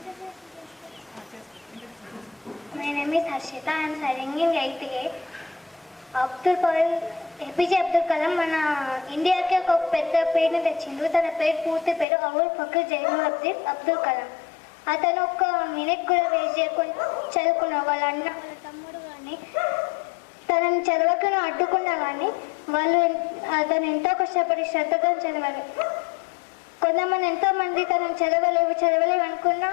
My name is Harshita. I am studying in 8th grade. APJ Abdul Kalam మన ఇండియాకి ఒక పెద్ద పేరుని తెచ్చిండు. తన పూర్తి పేరు అవుల్ ఫకీర్ జైనులబ్దీన్ అబ్దుల్ కలాం. అతను ఒక్క మినిట్ కూడా వేస్ట్ చేయకుండా చదువుకున్న వాళ్ళ అన్న, వాళ్ళ తమ్ముడు కానీ తనని చదవకుండా అడ్డుకున్నా కానీ అతను ఎంతో కష్టపడి శ్రద్ధగా చదవాలి. కొంతమంది ఎంతోమంది తనని చదవలేవు అనుకున్నా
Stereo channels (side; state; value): right; drops out; at 12.1 s